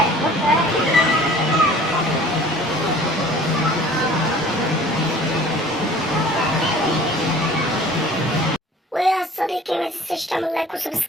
ويا صديقي ما تنساش تعمل لايك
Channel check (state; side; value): normal; both; correlation 0.48